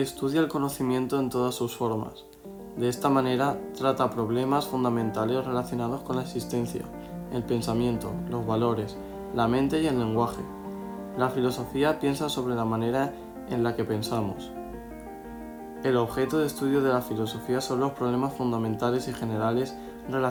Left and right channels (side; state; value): both; identical; correlation 1.00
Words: el conocimiento en todas sus formas. De esta manera, trata problemas fundamentales relacionados con la existencia, el pensamiento, los valores, la mente y el lenguaje. La filosofía piensa sobre la manera en la que pensamos. El objeto de estudio de la filosofía son los problemas fundamentales y generales